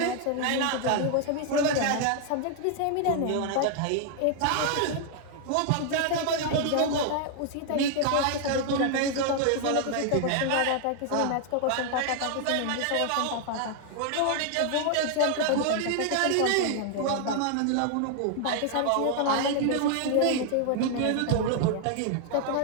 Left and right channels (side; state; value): both; different; correlation 0.00